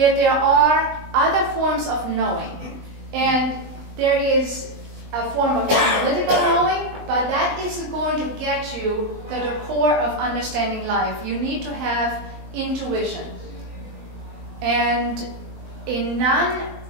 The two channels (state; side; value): late; left; 20 ms